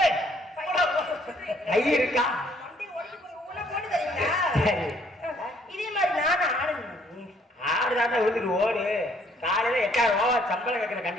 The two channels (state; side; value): normal; both; correlation 0.64